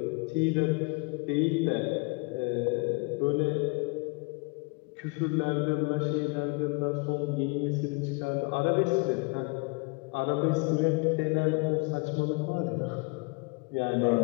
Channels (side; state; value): right; quieter; 30.8 dB